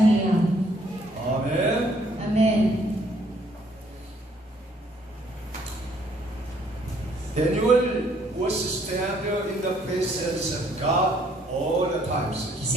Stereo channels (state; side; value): normal; both; correlation 0.65